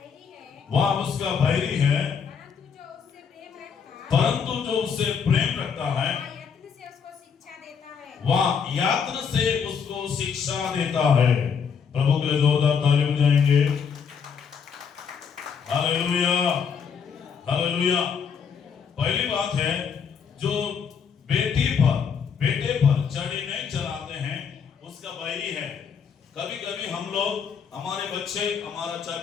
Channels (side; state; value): right; quieter; 6.7 dB